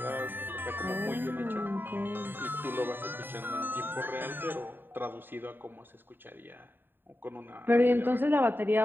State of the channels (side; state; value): left; late; 0.095 ms